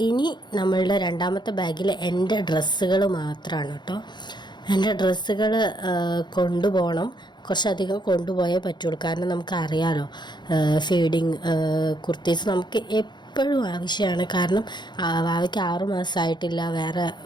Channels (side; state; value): right; late; 0.21 ms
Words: ഇനി നമ്മളുടെ രണ്ടാമത്തെ ബാഗിൽ എൻ്റെ ഡ്രസ്സുകൾ മാത്രമാണ് കേട്ടോ. എൻ്റെ ഡ്രസ്സുകൾ കൊണ്ടുപോകണം. കുറച്ചധികം കൊണ്ടുപോയേ പറ്റുള്ളൂ. കാരണം നമുക്കറിയാമല്ലോ, ഫീഡിങ് കുർത്തീസ് നമുക്ക് എപ്പോഴും ആവശ്യമാണ്. കാരണം വാവയ്ക്ക് 6 മാസമായിട്ടില്ല, വേറെ